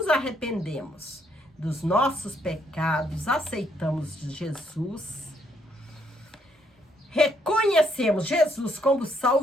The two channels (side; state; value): both; normal; correlation 0.72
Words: arrependemos dos nossos pecados, aceitamos Jesus, reconhecemos Jesus como